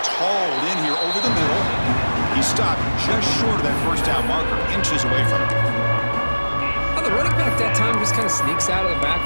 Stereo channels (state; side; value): inverted; both; correlation -1.00